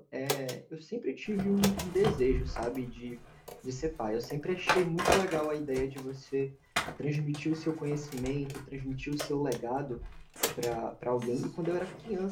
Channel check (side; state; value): both; identical; correlation 1.00